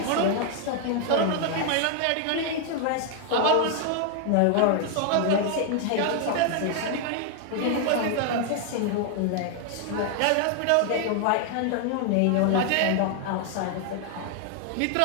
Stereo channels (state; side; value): different; both; correlation 0.00